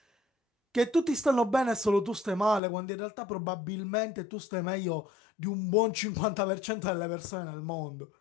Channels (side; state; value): right; drops out; at 2.6 s